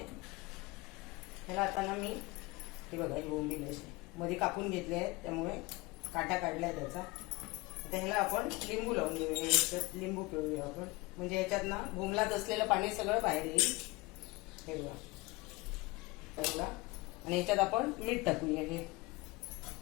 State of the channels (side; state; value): right; quieter; 22.9 dB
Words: ह्याला आता ना मी हे बघा ही बोंबील अशी मध्ये कापून घेतले आहे, त्यामुळे काटा काढलाय त्याचा। आता ह्याला आपण लिंबू लावून देऊया। याच्यात लिंबू पिळूया आपण, म्हणजे याच्यात ना बोंबलात असलेलं पाणी सगळं बाहेर येईल। हे बघा आणि याच्यात आपण मीठ टाकूया। हे